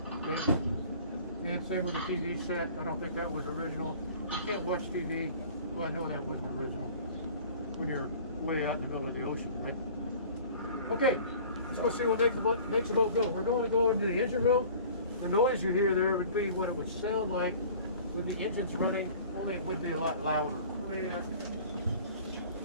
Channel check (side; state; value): both; inverted; correlation -0.46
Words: Okay? And same with the TV set. I don't think that was original. You can't watch TV. Well, I know that wasn't original when you're way out in the middle of the ocean, right? Okay, let's go see what makes the boat go. We're going to go into the engine room. The noise you hear there would be what it would sound like with the engines running, only it would be a lot louder.